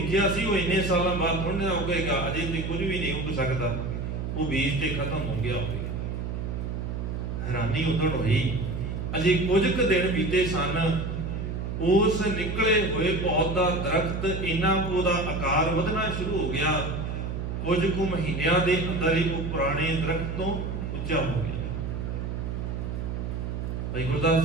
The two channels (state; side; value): noise; right; hum, 4 dB below the sound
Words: ਸੀ ਉਹ ਇੰਨੇ ਸਾਲਾਂ ਬਾਅਦ ਥੋੜ੍ਹਾ ਉੱਗੇਗਾ, ਅਜੇ ਤੇ ਕੁਝ ਵੀ ਨਹੀਂ ਉੱਗ ਸਕਦਾ, ਉਹ ਬੀਜ ਤੇ ਖਤਮ ਹੋ ਗਿਆ ਹੋਵੇ। ਹੈਰਾਨੀ ਉਦੋਂ ਹੋਈ, ਅਜੇ ਕੁਝ ਕੁ ਦਿਨ ਬੀਤੇ ਸਨ, ਉਸ ਨਿਕਲੇ ਹੋਏ ਪੌਦ ਦਾ ਦਰਖਤ ਇੰਨਾ ਕੁ ਉਹਦਾ ਆਕਾਰ ਵਧਣਾ ਸ਼ੁਰੂ ਹੋ ਗਿਆ, ਕੁਝ ਕੁ ਮਹੀਨਿਆਂ ਦੇ ਅੰਦਰ ਹੀ ਉਹ ਪੁਰਾਣੇ ਦਰਖਤ ਤੋਂ ਉੱਚਾ ਹੋ ਗਿਆ। ਭਾਈ ਗੁਰਦਾਸ